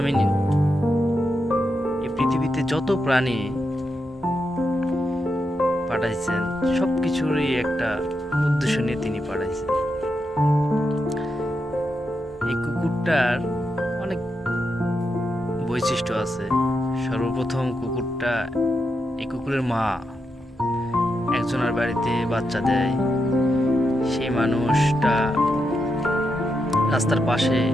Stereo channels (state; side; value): normal; both; correlation 0.85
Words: এই পৃথিবীতে যত প্রাণী পাঠাইছেন সবকিছুরই একটা উদ্দেশ্য নিয়ে তিনি পাঠাইছেন। এই কুকুরটার অনেক বৈশিষ্ট্য আছে। সর্বপ্রথম এই কুকুরের মা একজনের বাড়িতে বাচ্চা দেয়। সেই মানুষটা রাস্তার পাশে